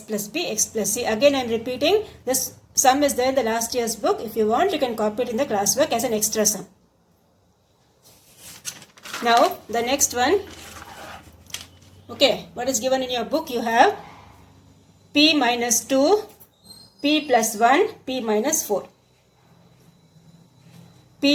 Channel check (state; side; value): identical; both; correlation 1.00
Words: plus B, x plus C. Again I am repeating, this sum is there in the last year's book. If you want, you can copy it in the classwork as an extra sum. Now the next one. Okay, what is given in your book? You have p minus 2, p plus 1, p minus 4.